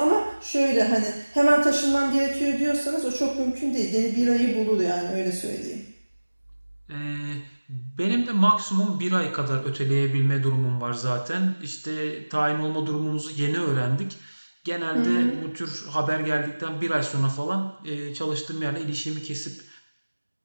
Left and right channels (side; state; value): both; inverted; correlation -1.00